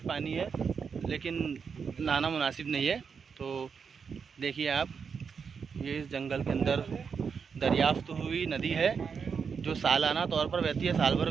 पानी है, लेकिन नहाना मुनासिब नहीं है। तो देखिए आप, ये इस जंगल के अंदर दरियाफ्त हुई नदी है जो सालाना तौर पर बहती है, साल भर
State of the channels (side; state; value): left; quieter; 6.1 dB